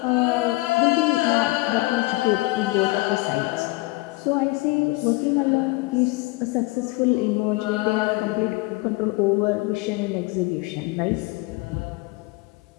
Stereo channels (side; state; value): right; quieter; 22.6 dB